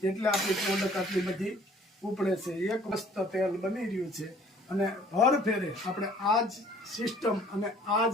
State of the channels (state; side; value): normal; both; correlation 0.55